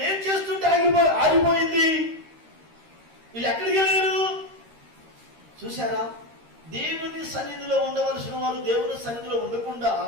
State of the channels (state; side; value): late; left; 13 ms